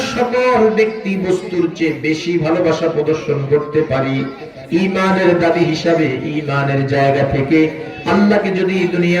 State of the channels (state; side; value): identical; both; correlation 1.00